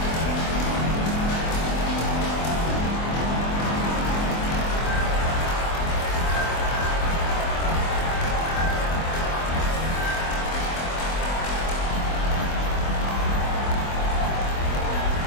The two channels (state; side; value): late; right; 24 ms